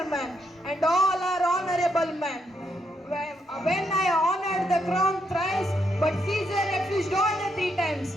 man, and all are honorable men. When I honored the crown thrice, but Caesar refused all the 3 times.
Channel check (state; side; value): normal; both; correlation 0.78